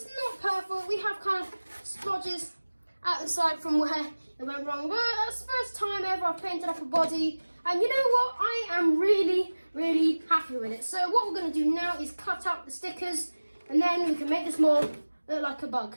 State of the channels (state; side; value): inverted; both; correlation -1.00